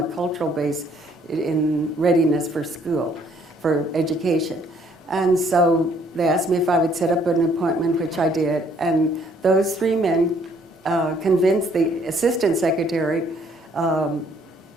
cultural base in readiness for school, for education. And so they asked me if I would set up an appointment, which I did. And those three men convinced the assistant secretary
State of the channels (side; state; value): both; normal; correlation 0.64